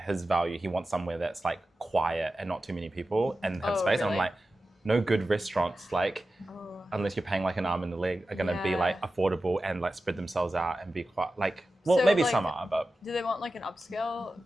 his value, he wants somewhere that's like quiet and not too many people and have space. Really? And I'm like, no good restaurants, like, unless you're paying like an arm and a leg, are gonna be like affordable and like spread themselves out and be quite like, well, so, maybe like, some are, but. Do they want like an upscale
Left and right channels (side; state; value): both; normal; correlation 0.93